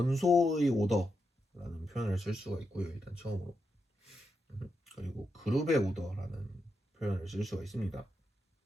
오더라는 표현을 쓸 수가 있고요, 일단 처음으로. 그리고 그룹의 오더라는 표현을 쓸 수가 있습니다.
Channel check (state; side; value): normal; both; correlation 0.85